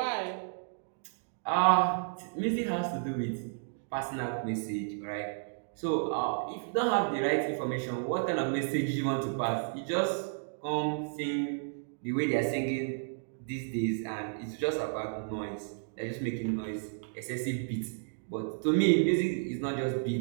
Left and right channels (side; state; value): left; silent; digital silence